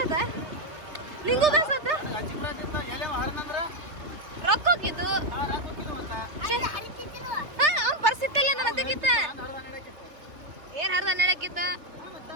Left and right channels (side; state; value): left; late; 3.3 ms